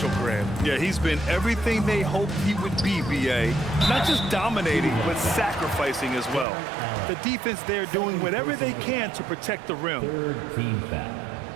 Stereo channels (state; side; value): drops out; left; at 6.5 s